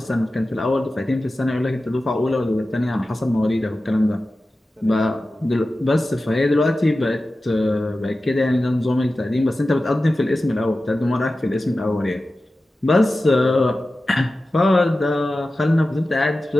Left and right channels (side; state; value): both; normal; correlation 0.94